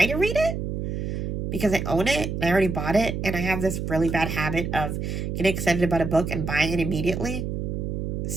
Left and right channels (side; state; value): right; noise; hum, 3 dB below the sound